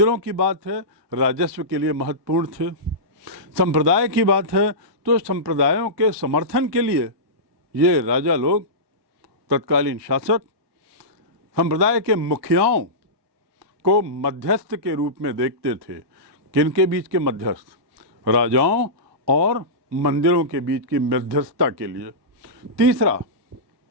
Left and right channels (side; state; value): left; late; 1.2 ms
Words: की बात है राजस्व के लिए महत्वपूर्ण थे, संप्रदाय की बात है तो संप्रदायों के समर्थन के लिए ये राजा लोग, तत्कालीन शासक, संप्रदाय के मुखियाओं को मध्यस्थ के रूप में देखते थे। किनके बीच के मध्यस्थ? राजाओं और मंदिरों के बीच की मध्यस्थता के लिए। तीसरा,